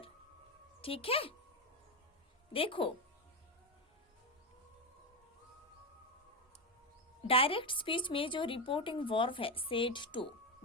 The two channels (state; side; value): normal; both; correlation 0.11